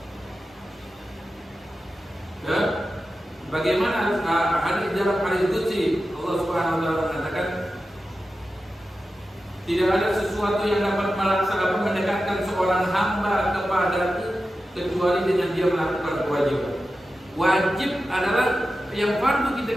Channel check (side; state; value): both; normal; correlation 0.92